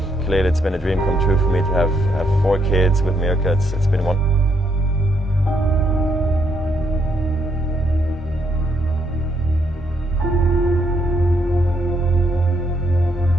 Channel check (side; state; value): both; normal; correlation 0.74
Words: clearly it's been a dream come true for me to have 4 kids with Mirka. It's been one.